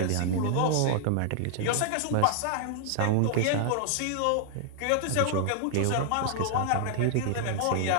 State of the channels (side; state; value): both; different; correlation 0.00